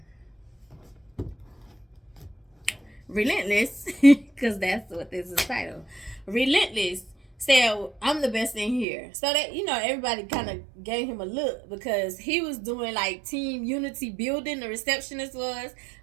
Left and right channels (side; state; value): left; drops out; at 8.8 s